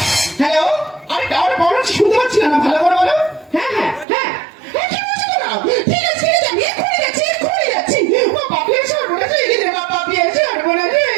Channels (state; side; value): drops out; left; at 4.0 s